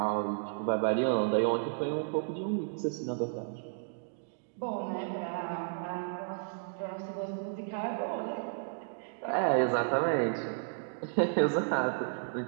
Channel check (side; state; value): left; silent; digital silence